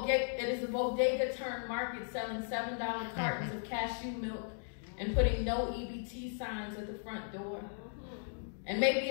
a bodega turned market selling $7 cartons of cashew milk and putting no EBT signs at the front door. And maybe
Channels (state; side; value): silent; right; digital silence